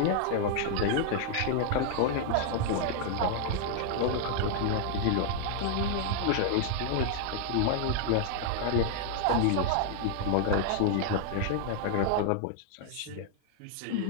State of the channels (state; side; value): different; both; correlation 0.00